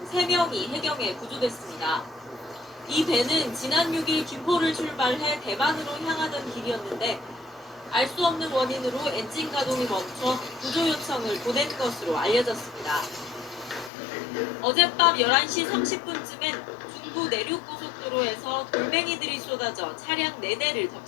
3명이 해경에 구조됐습니다. 이 배는 지난 6일 김포를 출발해 대만으로 향하던 길이었는데 알 수 없는 원인으로 엔진 가동이 멈춰 구조 요청을 보낸 것으로 알려졌습니다. 어젯밤 11시 30분쯤엔 중부 내륙고속도로에서 돌멩이들이 쏟아져 차량 4대를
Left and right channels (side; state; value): right; drops out; at 13.9 s